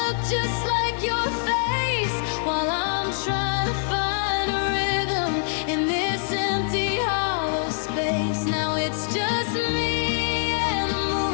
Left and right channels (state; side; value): silent; right; digital silence